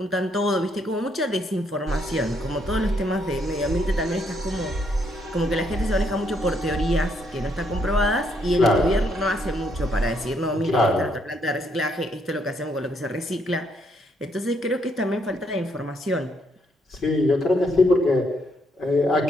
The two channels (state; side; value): normal; both; correlation 0.73